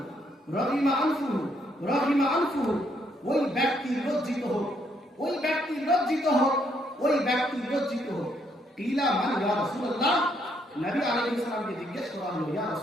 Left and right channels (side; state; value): both; normal; correlation 0.72